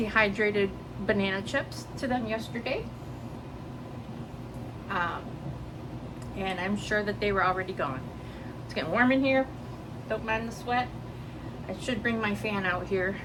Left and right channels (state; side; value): identical; both; correlation 1.00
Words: banana chips to them yesterday. And I'm sure that they were already gone. It's getting warm in here. Don't mind the sweat. I should bring my fan out here.